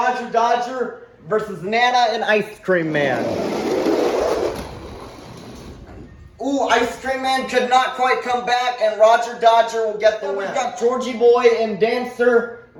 Dodger versus Nana and Ice Cream Man. Ooh, Ice Cream Man could not quite come back, and Roger Dodger will get the win. We've got Georgie Boy and Dancer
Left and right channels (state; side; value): identical; both; correlation 1.00